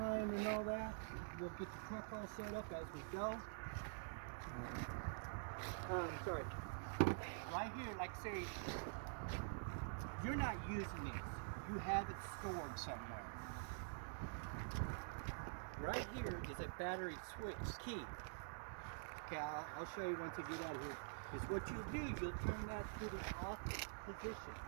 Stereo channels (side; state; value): left; silent; digital silence